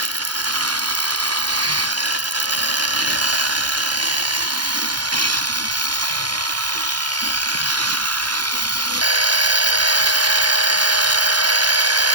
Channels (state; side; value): late; left; 0.71 ms